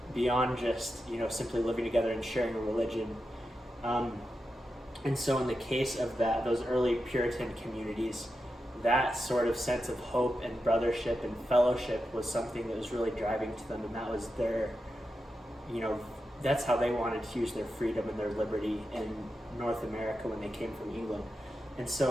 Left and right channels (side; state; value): both; normal; correlation 0.89